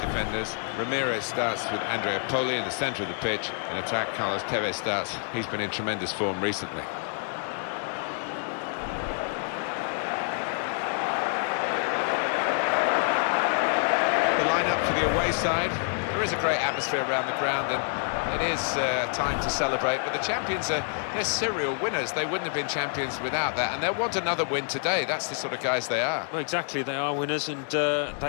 defenders. Ramirez starts with Andrea Poli in the centre of the pitch. In attack, Carlos Tevez starts. He's been in tremendous form recently. The line-up for the away side. There is a great atmosphere around the ground, and it is time to celebrate, but the champions they're serial winners. They wouldn't have been champions without that, and they'll want another win today. That's the sort of guys they are. Well, exactly, they are winners, and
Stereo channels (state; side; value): silent; right; 55 dB below the other